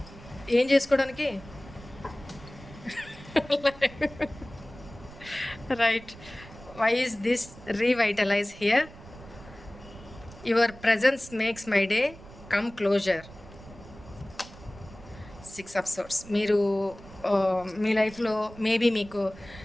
ఏం చేసుకోవడానికి right. Why is this revitalize here? Your presence makes my day come closer. 6 of Swords. మీరు మీ లైఫ్లో మేబీ మీకు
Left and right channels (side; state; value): right; noise; rumble, 18 dB below the sound